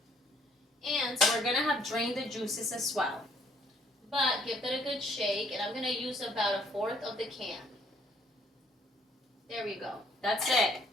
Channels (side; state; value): both; normal; correlation 0.65